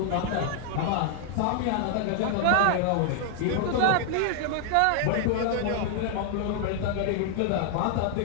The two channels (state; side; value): different; both; correlation 0.00